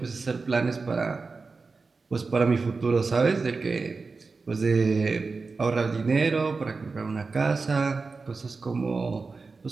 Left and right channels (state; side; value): quieter; left; 4.2 dB